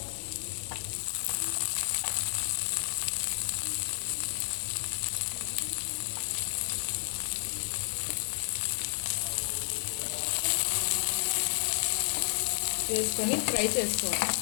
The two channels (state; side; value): silent; right; 57 dB below the other